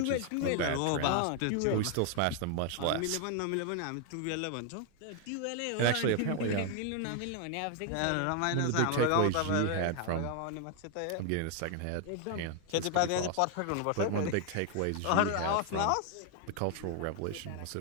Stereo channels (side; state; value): both; different; correlation 0.00